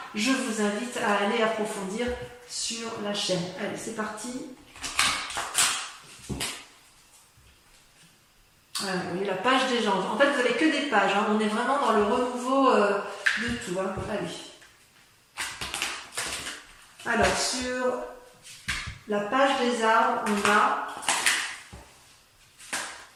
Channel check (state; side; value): identical; both; correlation 1.00